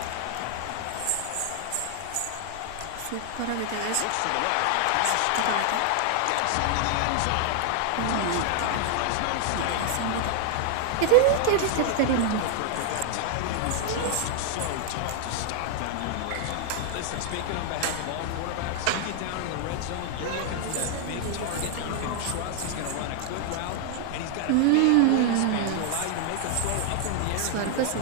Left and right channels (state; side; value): different; both; correlation 0.00